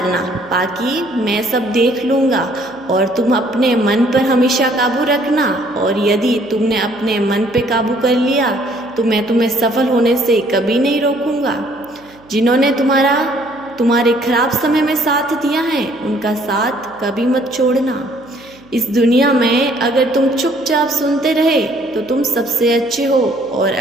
बाकी मैं सब देख लूँगा, और तुम अपने मन पर हमेशा काबू रखना। और यदि तुमने अपने मन पे काबू कर लिया तो मैं तुम्हें सफल होने से कभी नहीं रोकूंगा। जिन्होंने तुम्हारे खराब समय में साथ दिया है, उनका साथ कभी मत छोड़ना। इस दुनिया में अगर तुम चुपचाप सुनते रहे तो तुम सबसे अच्छे हो, और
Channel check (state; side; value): noise; right; hum, 27 dB below the sound